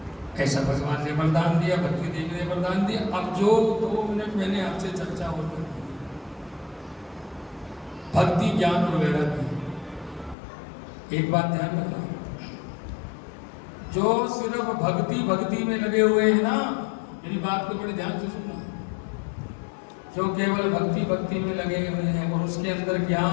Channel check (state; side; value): drops out; right; at 10.4 s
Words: ऐसा भगवान ने वरदान दिया, भक्ति देवी ने वरदान दिया। अब जो 2 मिनट मैंने आपसे चर्चा और कर दी, भक्ति, ज्ञान और वैराग्य। एक बात ध्यान रखना, जो सिर्फ भक्ति में लगे हुए हैं ना, मेरी बात को बड़े ध्यान से सुनना, जो केवल भक्ति में लगे हुए हैं और उसके अंदर